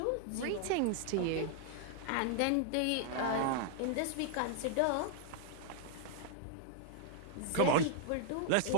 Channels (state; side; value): different; both; correlation 0.00